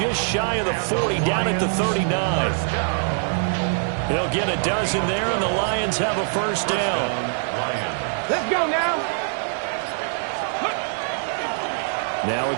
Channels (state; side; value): silent; left; 63 dB below the other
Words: shy of the 40, down at the 39. He'll get a dozen there, and the Lions have a first down. Let's go now. Now a